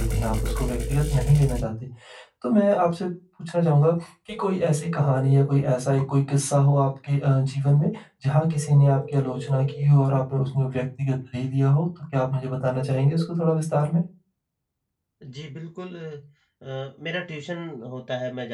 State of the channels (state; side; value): identical; both; correlation 1.00